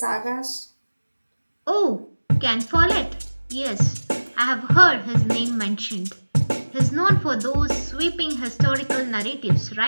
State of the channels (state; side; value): inverted; both; correlation -1.00